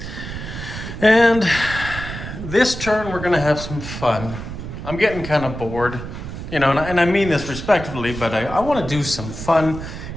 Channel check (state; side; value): noise; right; rumble, 9 dB below the sound